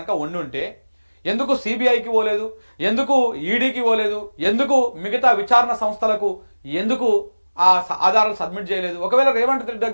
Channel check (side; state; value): both; inverted; correlation -1.00